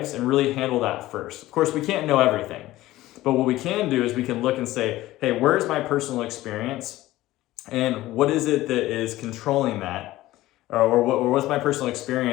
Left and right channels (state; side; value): quieter; right; 16.5 dB